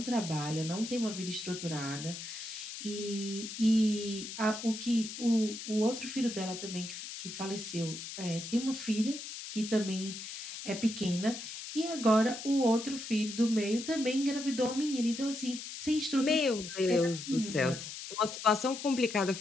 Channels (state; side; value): noise; left; hiss, 9 dB below the sound